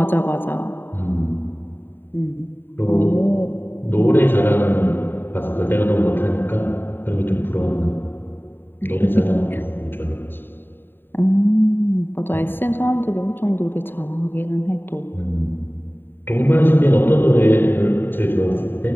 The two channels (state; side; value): late; right; 0.097 ms